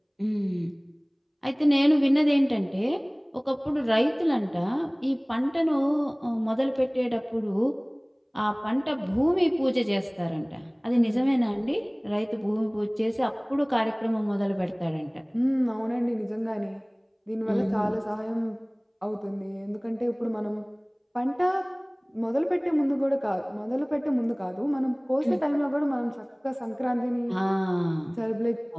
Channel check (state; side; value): identical; both; correlation 1.00